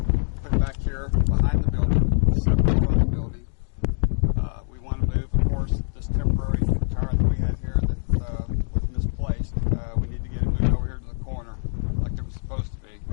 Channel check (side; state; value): right; silent; digital silence